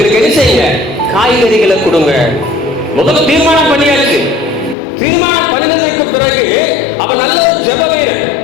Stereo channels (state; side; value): drops out; right; at 4.8 s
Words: என்ன செய்யுங்க, காய்கறிகளை கொடுங்க. முதல்ல தீர்மானம் பண்ணியாச்சு. தீர்மானம் பண்ணினதுக்கு பிறகு அவன் நல்ல ஒரு ஜெப வீரன்.